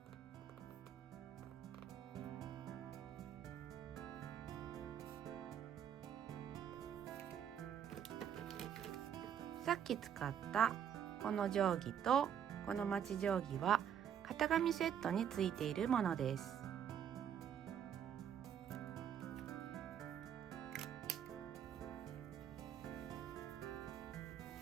さっき使ったこの定規とこのまち定規は型紙セットについているものです。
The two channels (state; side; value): quieter; left; 9.0 dB